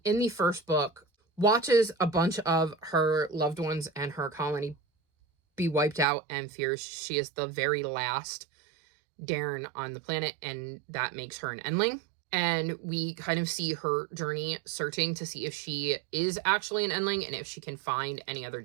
in the first book watches a bunch of her loved ones and her colony be wiped out and fears she is the very last Dairn on the planet, and that makes her an Endling. And we kind of see her journey searching to see if she is actually an Endling and if she can find any other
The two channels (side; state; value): left; drops out; at 6.1 s